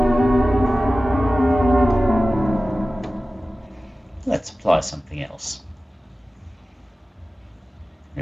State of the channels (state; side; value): normal; both; correlation 0.96